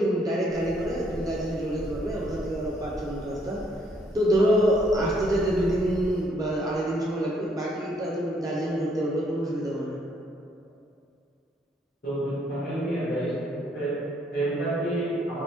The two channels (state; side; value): normal; both; correlation 0.68